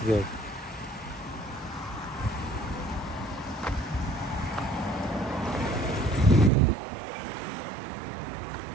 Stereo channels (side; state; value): left; drops out; at 6.5 s